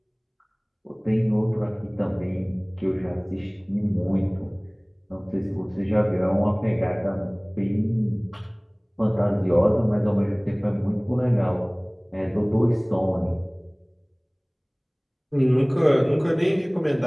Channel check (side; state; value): both; identical; correlation 1.00